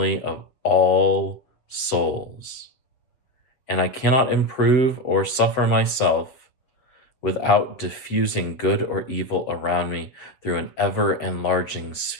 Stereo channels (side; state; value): right; late; 7.4 ms